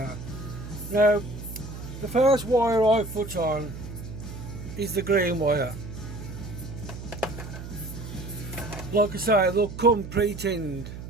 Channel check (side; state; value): right; noise; hum, 10 dB below the sound